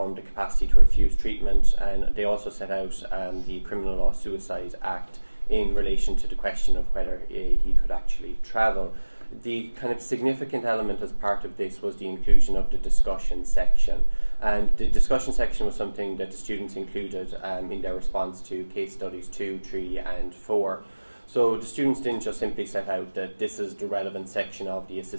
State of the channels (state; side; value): inverted; both; correlation -1.00